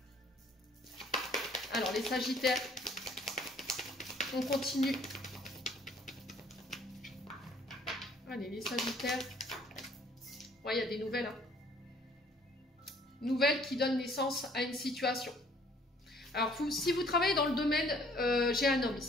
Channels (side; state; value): both; normal; correlation 0.59